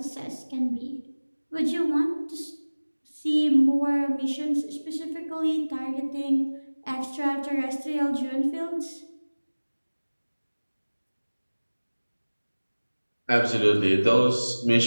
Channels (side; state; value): both; inverted; correlation -1.00